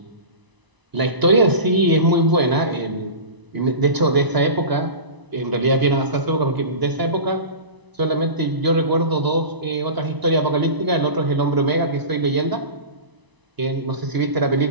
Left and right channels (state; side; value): late; left; 1.0 ms